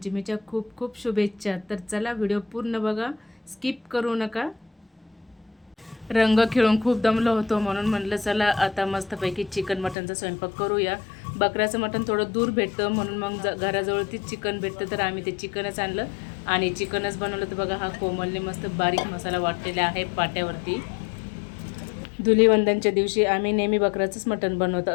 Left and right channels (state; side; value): drops out; right; at 10.0 s